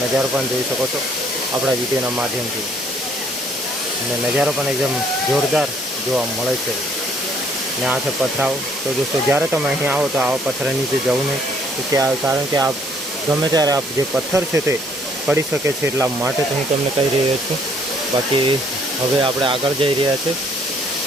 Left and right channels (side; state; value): both; normal; correlation 0.64